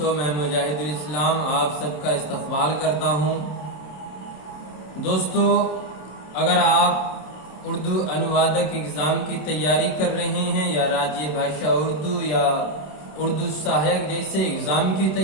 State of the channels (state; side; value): late; right; 27 ms